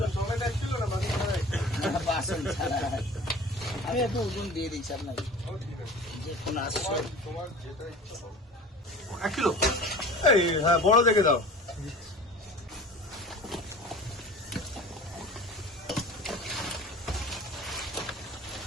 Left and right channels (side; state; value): both; normal; correlation 0.40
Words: আমি একটু ওজন দিয়ে দিচ্ছি আপনাকে, যে কোনো আসছে 1 কিলো। এই হ্যাঁ, বড় দেখে দাও।